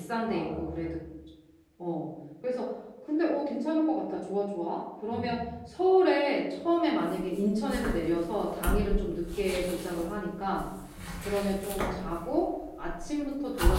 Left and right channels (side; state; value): both; identical; correlation 1.00